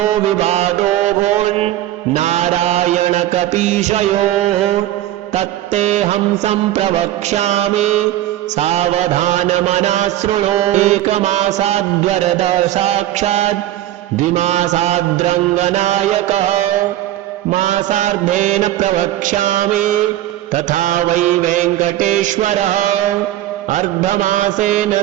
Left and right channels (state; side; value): quieter; left; 13.8 dB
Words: विवादो भून् नारायणकपीशयोः तत्तेऽहं सम्प्रवक्ष्यामि सावधानमना शृणु। एकमासाद्वरद साक्षात् द्विमासाद्रङ्गनायकः मासार्धेन प्रवक्ष्यामि तथा वै वेङ्कटेश्वरः। अर्धमासेन